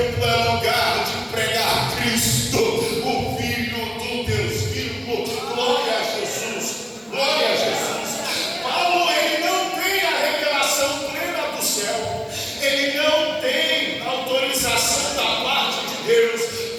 é lugar de pregar Cristo, o Filho do Deus vivo. Glória a Jesus, glória a Jesus. Paulo, ele não tem a revelação plena do céu, ele não tem autorização da parte de Deus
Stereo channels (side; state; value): both; identical; correlation 1.00